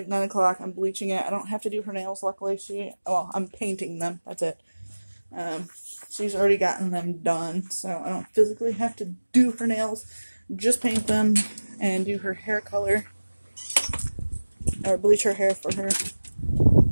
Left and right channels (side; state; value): both; inverted; correlation -1.00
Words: 9 o'clock. I'm bleaching it. I don't have to do her nails, luckily. I'm painting them, that's it. She's already gotten them done, so I don't physically have to do her nails. Just paint them and do her hair color, or bleach her hair for her.